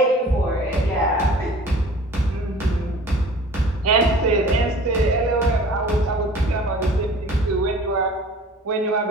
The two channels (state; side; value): normal; both; correlation 0.46